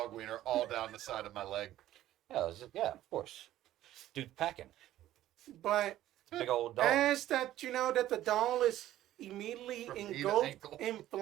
wiener all down the side of my leg. Yeah, of course. Dude's packing. But Big old dog. as that you know that the doll is immediately From knee to engulfed ankle. in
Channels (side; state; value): left; quieter; 13.6 dB